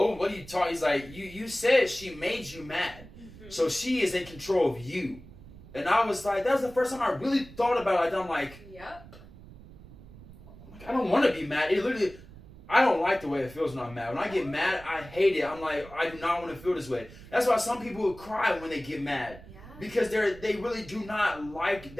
what are you talking?" He's like, "You said she made you mad, so she is in control of you." And I was like, that was the first time I really thought about it. I'm like, yep. I don't want to be mad. It literally. I don't like the way it feels when I'm mad. When I get mad, I hate it. I'm like, I do not want to feel this way. That's why some people cry when they get mad. Yeah. Because they really do not like,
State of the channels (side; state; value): right; noise; rumble, 18 dB below the sound